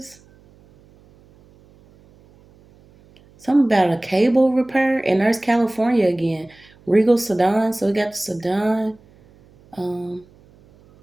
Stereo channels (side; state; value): right; noise; hum, 29 dB below the sound